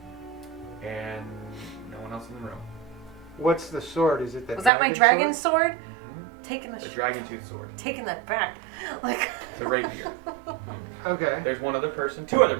and no one else in the room. What's the sword? Is it the? Was that my dragon sword? Taking The dragon tooth sword. taking that back. It's a rapier. Okay. There's one other person, two other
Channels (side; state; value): left; drops out; at 4.7 s